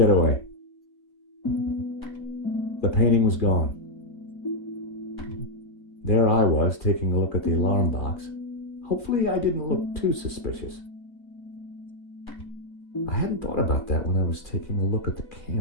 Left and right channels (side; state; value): right; late; 2.4 ms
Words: The painting was gone. There I was, taking a look at the alarm box. Hopefully I didn't look too suspicious. I hadn't thought about that when I was taking a look at the